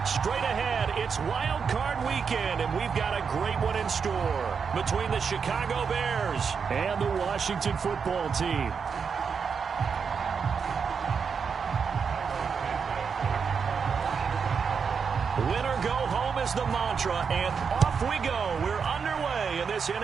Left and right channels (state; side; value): quieter; left; 6.1 dB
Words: Straight ahead, it's Wild Card Weekend, and we've got a great one in store between the Chicago Bears and the Washington Football Team. Winner go home is the mantra, and off we go. We're underway in this